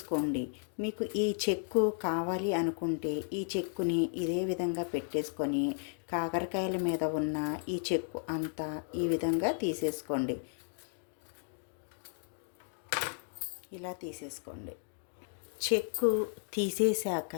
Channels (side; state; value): right; silent; 55 dB below the other